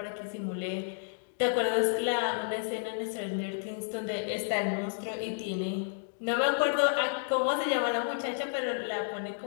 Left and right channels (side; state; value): right; silent; digital silence